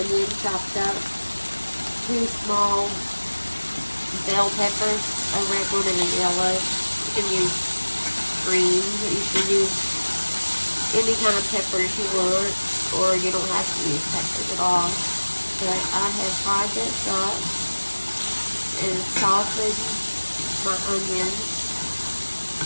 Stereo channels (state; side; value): inverted; both; correlation -1.00